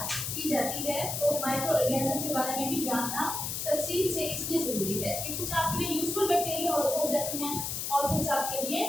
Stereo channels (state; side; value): noise; left; hiss, 3 dB below the sound